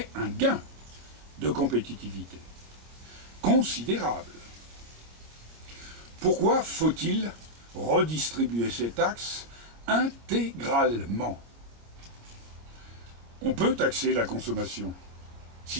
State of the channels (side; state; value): left; late; 26 ms